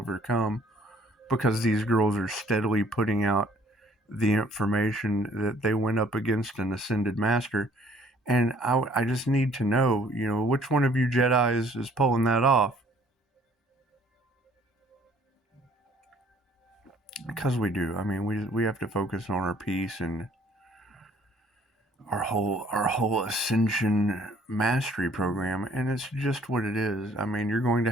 because these girls are steadily putting out the information that they went up against an ascended master. And I just need to know, which one of you Jedis is pulling that off. Because we do. I mean, we have to focus on our peace and our whole ascension mastery program, and it's just what it is. I mean, you're going to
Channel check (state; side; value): normal; both; correlation 0.59